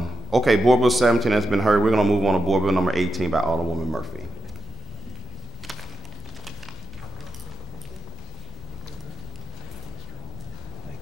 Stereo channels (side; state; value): both; normal; correlation 0.87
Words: Okay, Board Bill 17 has been heard. We're going to move on to Board Bill number 18 by Alderwoman Murphy.